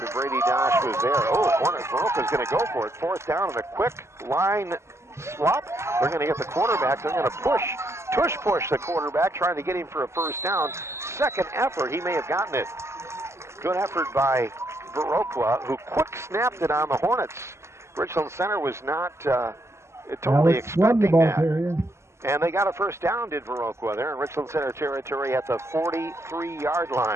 Brady Dosh was there. Viroqua's going to go for it. Fourth down and a quick line swap. They're going to get the quarterback. They're going to push the quarterback, trying to get him for a first down. Second effort, he may have gotten it. Good effort by Viroqua, who quick snapped it on the Hornets. Richland Center was not totally expecting that. And they got a first down, did Viroqua. They're in Richland Center territory at the 43-yard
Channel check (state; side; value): late; left; 0.13 ms